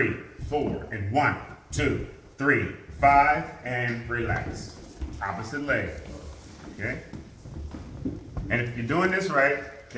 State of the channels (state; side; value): identical; both; correlation 1.00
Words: 4, and 1, 2, 3, 5, and relax. Opposite leg, okay? And if you're doing this right,